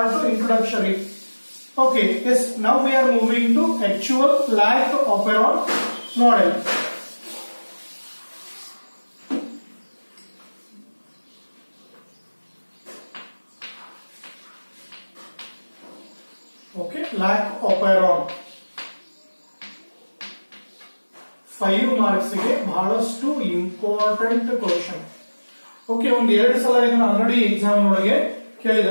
introductory. Okay, yes, now we are moving to actual lac operon model. Okay, lac operon 5 marks ಗೆ ಬಹಳಷ್ಟು ಇಂಪಾರ್ಟೆಂಟ್ ಕ್ವಶನ್. ಓಕೆ, ಒಂದ್ 2 ಸಲ ಇದನ್ನ ಆಲ್ರೆಡಿ ಎಕ್ಸಾಮ್ ಒಳಗೆ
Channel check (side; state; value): both; inverted; correlation -1.00